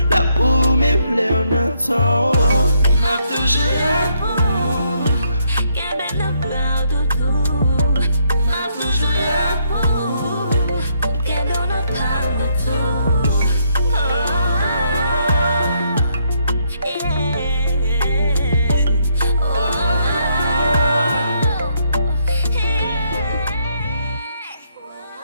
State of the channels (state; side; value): inverted; both; correlation -0.73